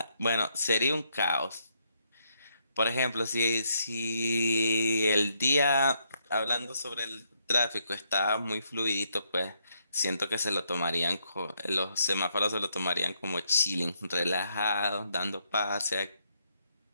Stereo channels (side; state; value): both; inverted; correlation -0.75